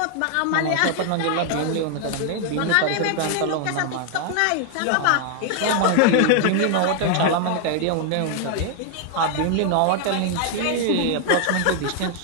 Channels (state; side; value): different; both; correlation 0.00